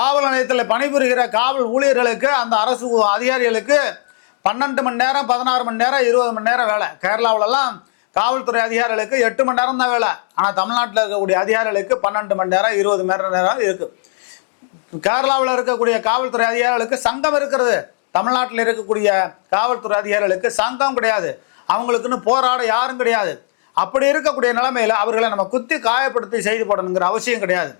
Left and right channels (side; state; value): right; silent; digital silence